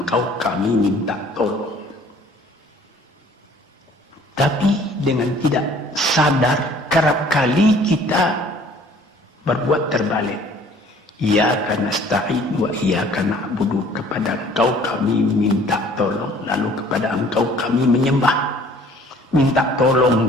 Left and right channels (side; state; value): both; normal; correlation 0.54